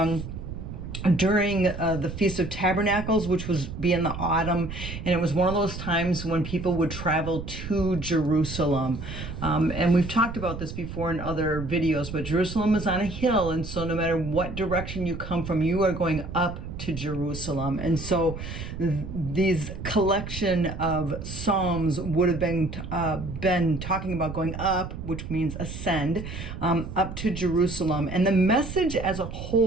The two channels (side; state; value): right; noise; rumble, 8 dB below the sound